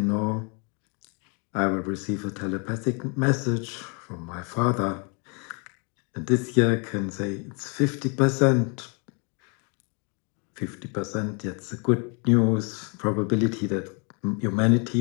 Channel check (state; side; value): quieter; right; 35.5 dB